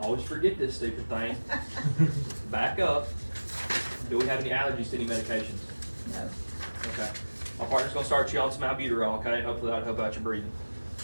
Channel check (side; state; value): both; inverted; correlation -1.00